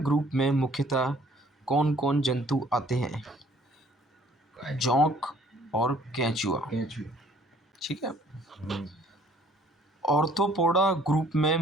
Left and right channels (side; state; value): both; normal; correlation 0.58